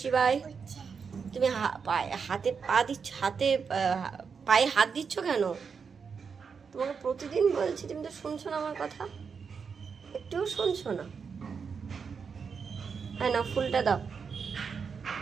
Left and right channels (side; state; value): left; quieter; 5.9 dB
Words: তুমি হাতে পা দিচ্ছ, হাতে পায়ে হাত দিচ্ছ কেন? তোমাকে প্রতিদিন বলছি, তুমি তো শুনছো না আমার কথা, একটুও শুনছো না। হ্যাঁ না, ফুলটা দাও,